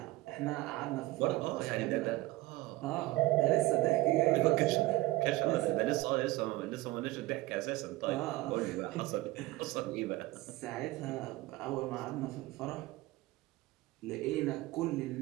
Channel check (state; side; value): quieter; left; 18.5 dB